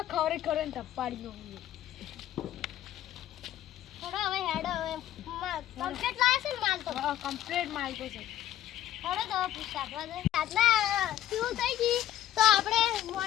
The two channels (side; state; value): right; quieter; 12.2 dB